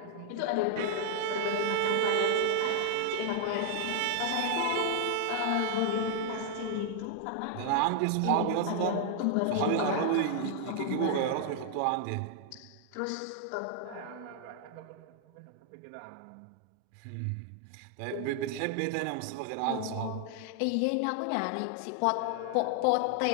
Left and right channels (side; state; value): both; different; correlation 0.00